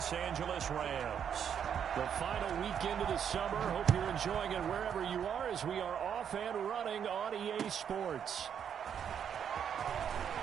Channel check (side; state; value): left; quieter; 8.2 dB